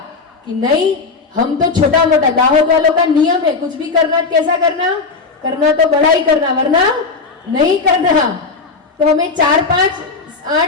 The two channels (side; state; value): right; quieter; 4.3 dB